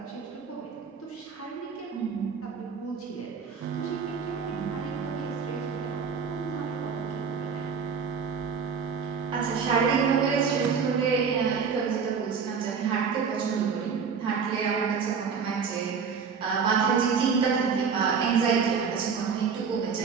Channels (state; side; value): quieter; left; 6.0 dB